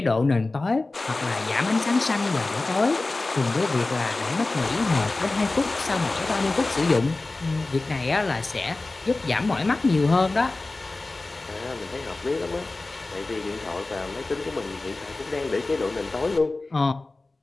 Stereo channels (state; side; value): quieter; right; 3.2 dB